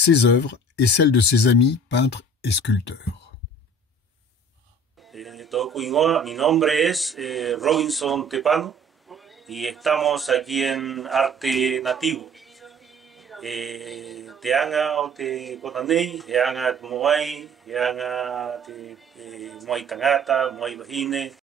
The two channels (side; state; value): both; normal; correlation 0.48